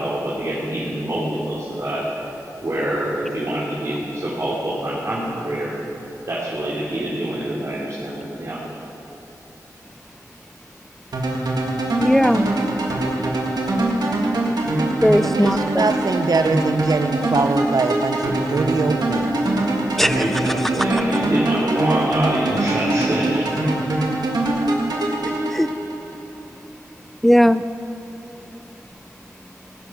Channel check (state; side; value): normal; both; correlation 0.86